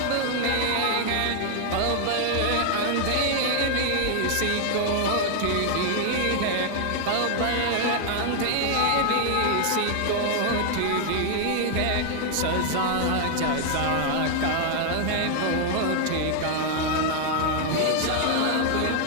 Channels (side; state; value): both; different; correlation 0.00